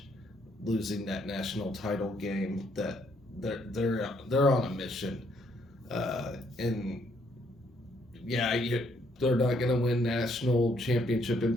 losing that national title game. That they're on a mission, and yeah, they're not going to win national championship in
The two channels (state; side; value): normal; both; correlation 0.70